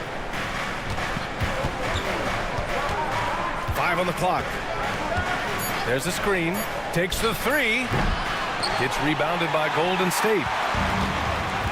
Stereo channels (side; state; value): both; identical; correlation 1.00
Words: On the clock. There's a screen. Takes the 3. It's rebounded by Golden State.